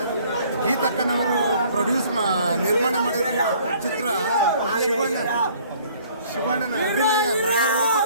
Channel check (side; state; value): both; inverted; correlation -0.56